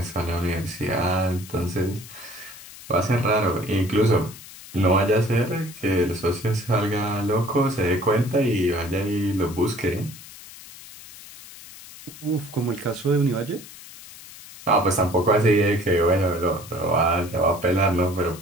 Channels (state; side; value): noise; left; hiss, 17 dB below the sound